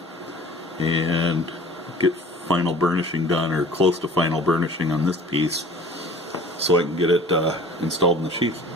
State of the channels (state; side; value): normal; both; correlation 0.46